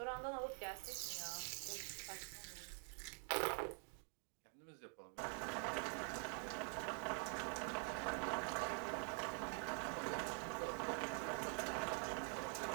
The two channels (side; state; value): left; quieter; 39.8 dB